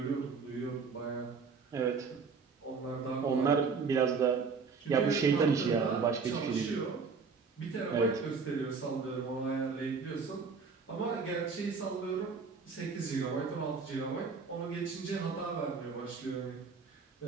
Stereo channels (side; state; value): left; quieter; 5.1 dB